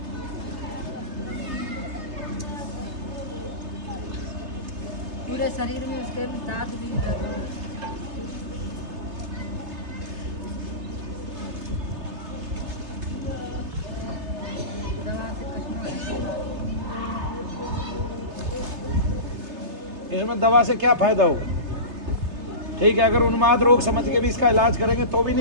पूरे शरीर में उसके दांत भी निकल गए। दवा से कटना है। इसमें दवा से क्या फायदा होगा? ठीक है, अगर उन्माद रोग समझ के भी इसका इलाज करेंगे तो भी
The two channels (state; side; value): late; left; 3.3 ms